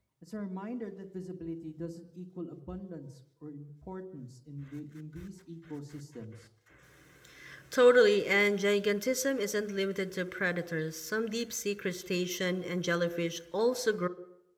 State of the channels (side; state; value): both; identical; correlation 1.00